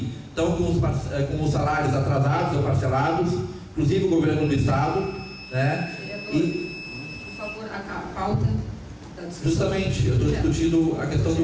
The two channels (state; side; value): identical; both; correlation 1.00